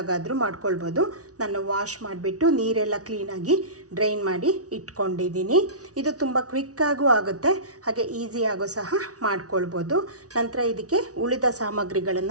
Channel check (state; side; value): late; left; 0.67 ms